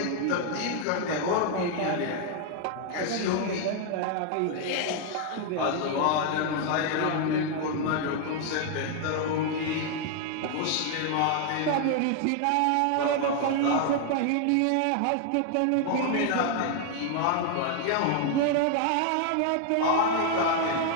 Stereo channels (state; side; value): different; both; correlation 0.00